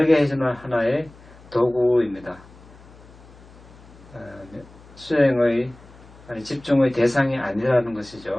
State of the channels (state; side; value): noise; left; hum, 22 dB below the sound